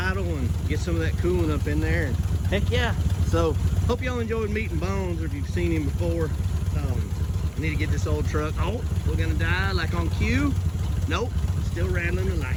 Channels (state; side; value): identical; both; correlation 1.00